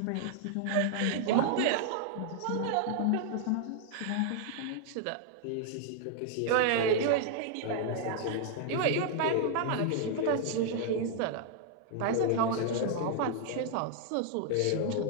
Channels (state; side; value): different; both; correlation 0.00